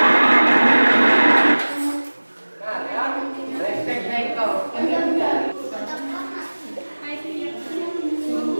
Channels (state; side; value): inverted; both; correlation -1.00